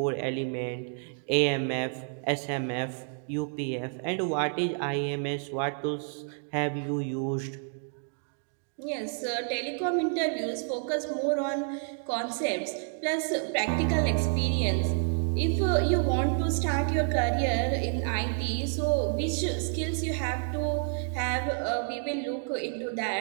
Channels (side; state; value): left; silent; 58 dB below the other